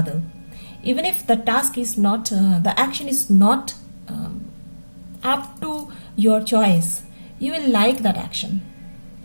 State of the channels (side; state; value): both; inverted; correlation -1.00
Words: Even if the task is not, the action is not up to your choice, you will like that action.